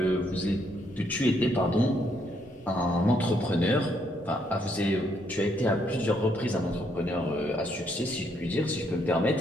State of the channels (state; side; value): normal; both; correlation 0.73